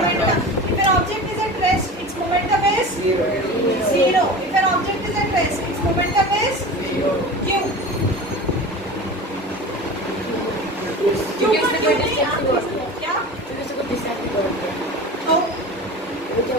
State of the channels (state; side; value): normal; both; correlation 0.34